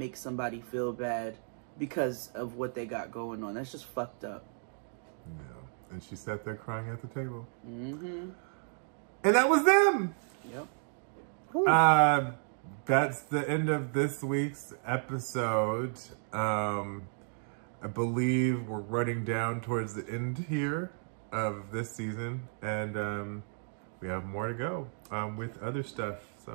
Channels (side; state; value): left; silent; 56 dB below the other